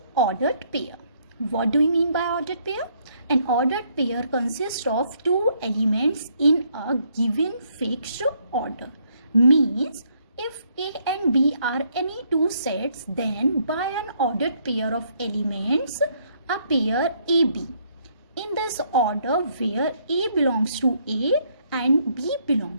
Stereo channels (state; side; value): inverted; both; correlation -0.70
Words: ordered pair. What do we mean by ordered pair? An ordered pair consists of two elements in a given fixed order. Means if A and B are any two sets, then by an ordered pair of elements, a pair AB. In this order where A belongs to A and B